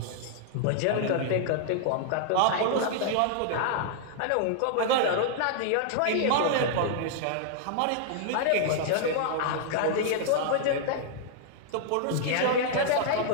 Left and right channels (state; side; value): different; both; correlation -0.01